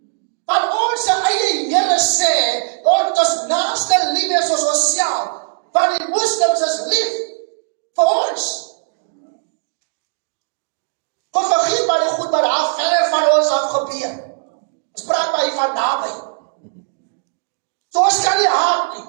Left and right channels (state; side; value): silent; left; digital silence